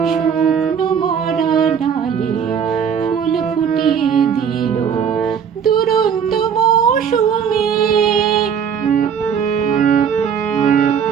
শুকনো মরা ডালে ফুল ফুটিয়ে দিল দুরন্ত মৌসুমী।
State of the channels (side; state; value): left; quieter; 7.5 dB